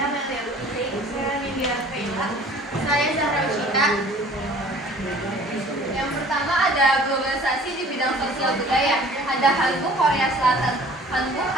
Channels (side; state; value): both; normal; correlation 0.49